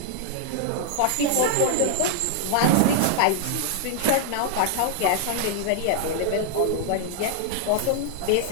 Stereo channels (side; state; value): both; different; correlation -0.01